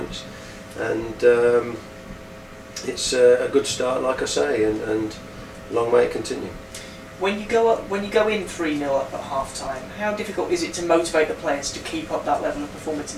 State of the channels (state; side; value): identical; both; correlation 1.00